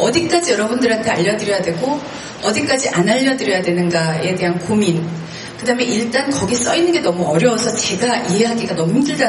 여러분들한테 알려드려야 되고 어디까지 안 알려드려야 되는가에 대한 고민. 그 다음에 일단 거기 써있는 게 너무 어려워서 제가 이해하기가 너무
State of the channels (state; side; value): identical; both; correlation 1.00